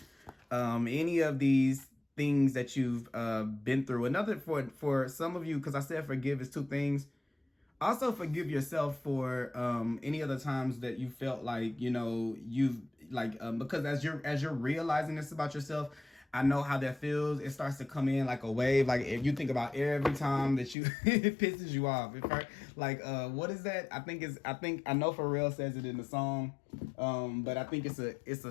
any of these things that you've been through. Another, for some of you, because I said forgive is two things. Also forgive yourself for any other times that you felt like, you know, you've like, because as you're realizing this about yourself, I know how that feels. It starts to come in like a wave. Like if you think about every time that you it pisses you off. It hurt. Like what is that? I think I know Pharrell says it in the song, but I think it's a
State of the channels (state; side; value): drops out; right; at 20.8 s